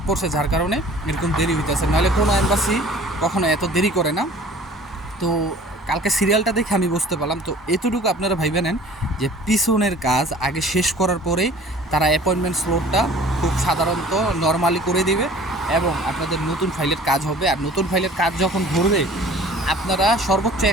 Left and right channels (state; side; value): normal; both; correlation 0.48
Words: পড়ছে, যার কারণে এরকম দেরি হইতেছে। নাহলে কোনো এম্বাসি কখনো এত দেরি করে না। তো কালকে সিরিয়ালটা দেখে আমি বুঝতে পারলাম। তো এতটুকু আপনারা ভাইবে নেন যে পিছনের কাজ আগে শেষ করার পরেই তারা অ্যাপয়েন্টমেন্ট স্লটটা খুব সাধারণত নর্মালি করে দিবে এবং আপনাদের নতুন ফাইলের কাজ হবে। আর নতুন ফাইলের কাজ যখন ধরবে আপনারা সর্বোচ্চ